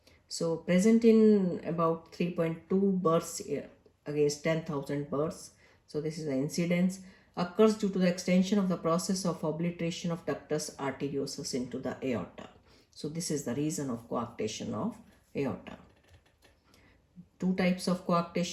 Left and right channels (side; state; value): both; identical; correlation 1.00